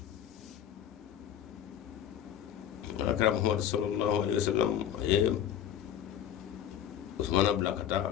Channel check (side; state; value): right; quieter; 10.0 dB